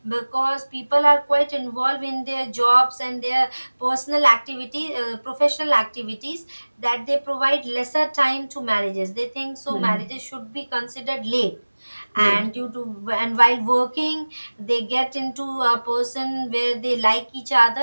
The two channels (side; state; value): both; inverted; correlation -1.00